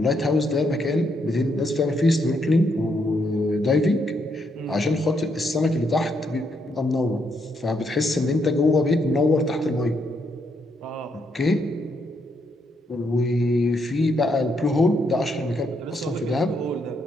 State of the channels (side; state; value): both; normal; correlation 0.76